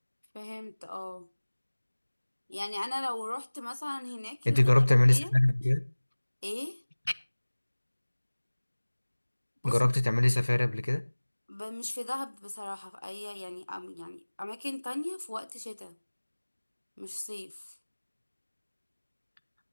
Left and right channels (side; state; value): both; inverted; correlation -1.00